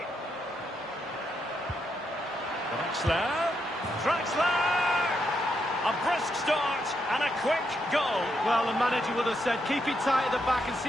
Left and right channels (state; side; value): normal; both; correlation 0.80